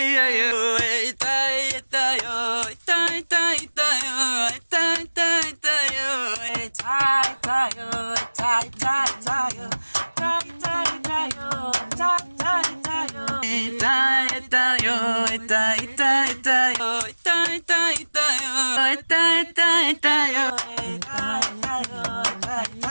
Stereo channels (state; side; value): inverted; both; correlation -1.00